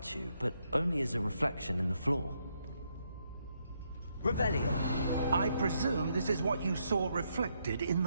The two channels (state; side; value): inverted; both; correlation -0.77